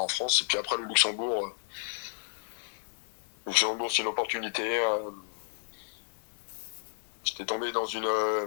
France. Et puis après le Luxembourg, c'est une opportunité. J'étais tombé dans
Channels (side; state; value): right; silent; digital silence